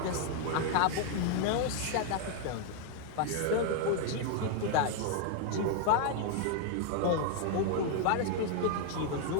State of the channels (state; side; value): different; both; correlation 0.00